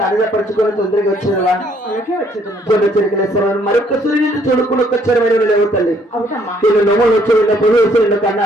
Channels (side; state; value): both; normal; correlation 0.65